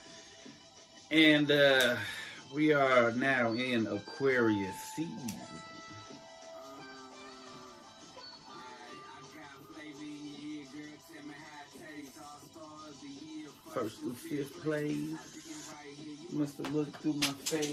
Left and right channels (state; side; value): identical; both; correlation 1.00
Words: And we are now in Aquarius season. First through fifth place, must have looked through my